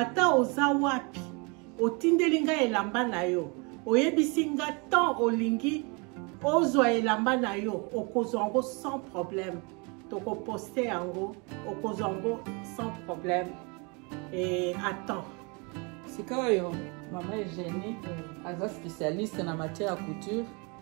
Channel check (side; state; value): left; quieter; 31.2 dB